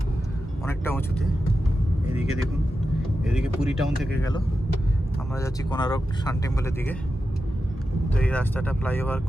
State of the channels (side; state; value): both; normal; correlation 0.91